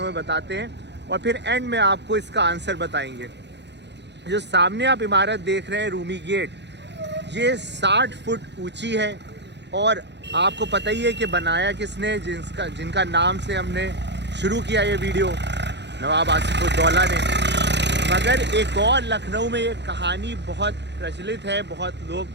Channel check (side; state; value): left; late; 0.51 ms